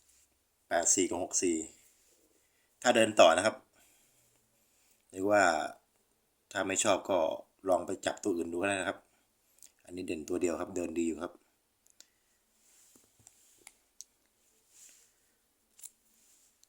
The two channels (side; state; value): both; identical; correlation 1.00